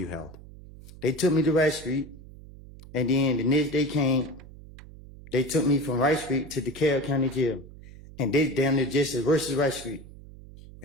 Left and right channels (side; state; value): right; noise; hum, 18 dB below the sound